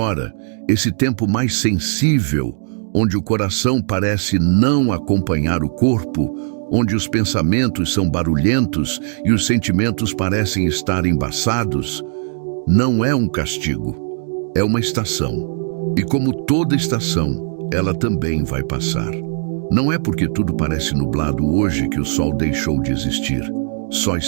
esse tempo mais sensível, onde o coração parece não acompanhar o corpo, onde os pensamentos são barulhentos e os sentimentos parecem estar embaçados, não é um castigo, é uma estação. E como toda estação, ela também vai passar. Não é porque tudo parece nublado hoje que o sol deixou de existir. Só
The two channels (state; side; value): silent; left; digital silence